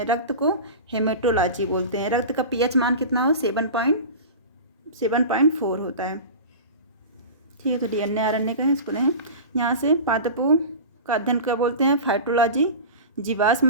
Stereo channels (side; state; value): both; inverted; correlation -0.31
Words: रक्त को हेमेटोलॉजी बोलते हैं। रक्त का पीएच मान कितना हो? 7.4 होता है। ठीक है। तो डीएनए आरएनए का है, इसको लें। यहाँ से पादपों का अध्ययन क्या बोलते हैं? फाइटोलॉजी।